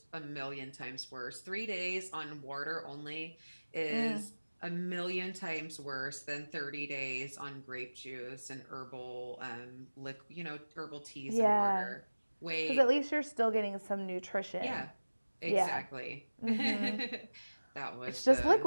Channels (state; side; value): inverted; both; correlation -1.00